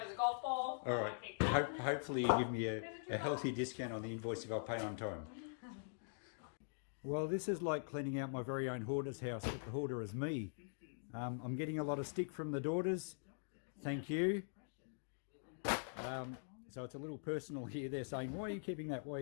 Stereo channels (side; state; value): right; silent; digital silence